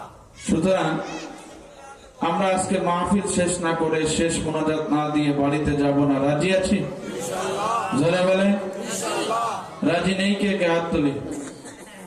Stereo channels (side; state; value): both; identical; correlation 1.00